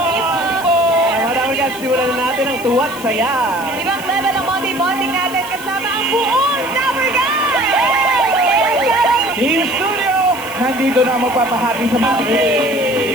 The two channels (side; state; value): left; noise; hiss, 15 dB below the sound